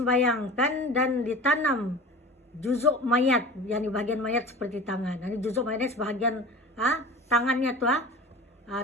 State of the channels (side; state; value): both; normal; correlation 0.36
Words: dan ditanam juzuk mayat, yakni bagian mayat seperti tangan. Ini juzuk mayatnya sebahagian tangannya tuh,